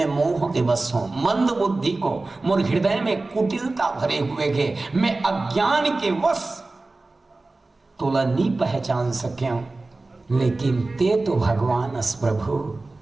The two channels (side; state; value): left; quieter; 3.2 dB